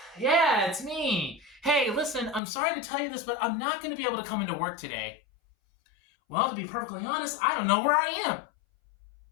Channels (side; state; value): right; drops out; at 2.4 s